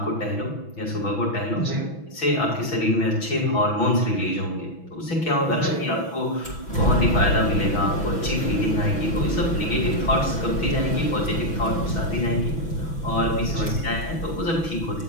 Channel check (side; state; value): right; late; 6.1 ms